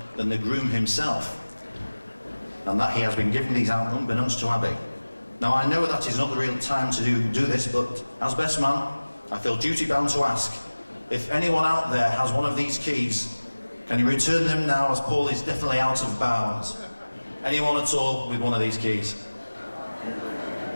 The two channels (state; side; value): inverted; both; correlation -1.00